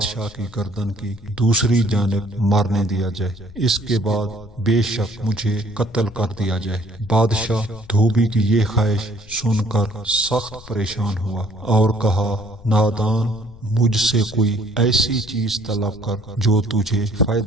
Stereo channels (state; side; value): noise; left; rumble, 20 dB below the sound